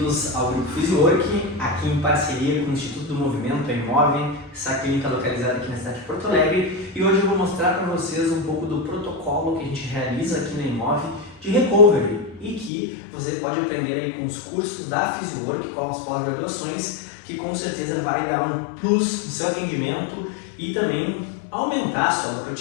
ao Grupo Physiwork, aqui em parceria com o Instituto do Movimento, a Imove, essa clínica localizada aqui na cidade de Porto Alegre. E hoje eu vou mostrar para vocês um pouco do protocolo que a gente realiza aqui na Imove de recovery e que você pode aprender aí com os cursos da Physiwork, com as pós-graduações, que com certeza vai dar um plus no seu atendimento e também aumentar a sua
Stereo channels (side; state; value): right; drops out; at 12.7 s